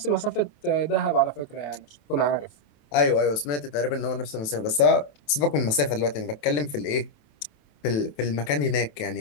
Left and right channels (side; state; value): right; late; 27 ms